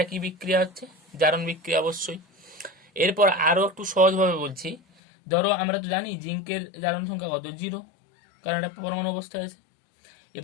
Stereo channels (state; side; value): drops out; right; at 4.8 s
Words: কি বিক্রিয়া হচ্ছে, জারণ বিক্রিয়া অবশ্যই। এরপর আরো একটু সহজভাবে বলছি, ধরো আমরা তো জানি জিঙ্কের জারণ সংখ্যা কত, 0, কারণ এটা পরমাণু অবস্থায় আছে।